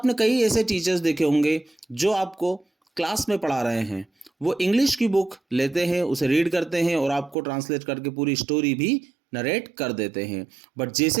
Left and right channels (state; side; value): drops out; left; at 7.4 s